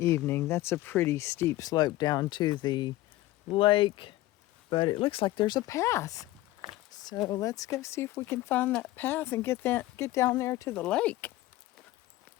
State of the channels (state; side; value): quieter; right; 16.8 dB